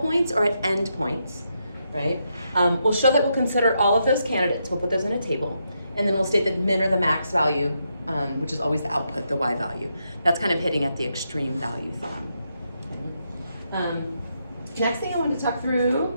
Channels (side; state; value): both; inverted; correlation -0.81